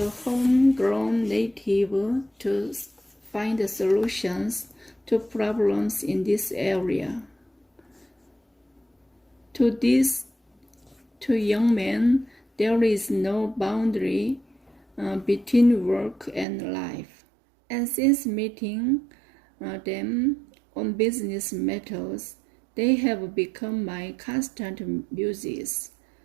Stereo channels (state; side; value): drops out; left; at 16.4 s